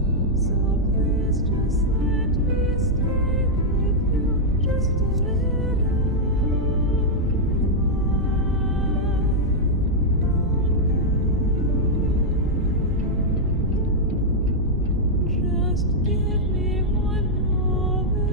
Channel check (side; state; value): both; normal; correlation -0.04